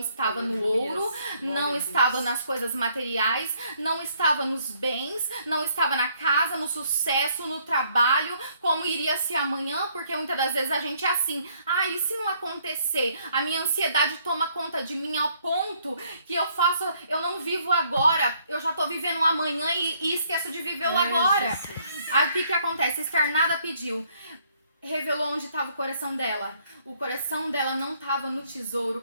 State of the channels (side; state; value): both; inverted; correlation -0.66